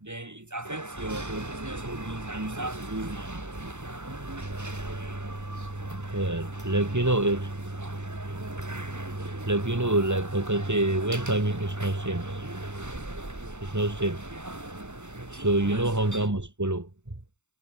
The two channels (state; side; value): late; left; 0.83 ms